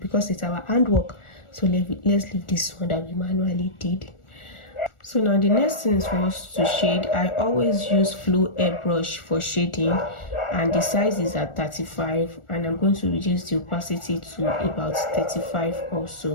it's our handwork. So let's leave this one that we manually did. So now the next thing is for us to shade. I always use flow airbrush for shading, and the size is at 35, and I'm going to reduce the opacity to about 35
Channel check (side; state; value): right; late; 1.4 ms